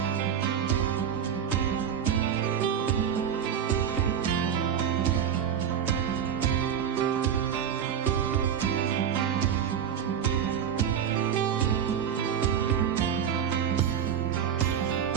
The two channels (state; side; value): quieter; left; 8.4 dB